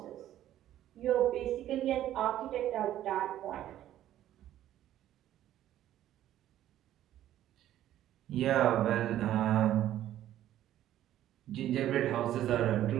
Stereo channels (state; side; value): quieter; left; 12.5 dB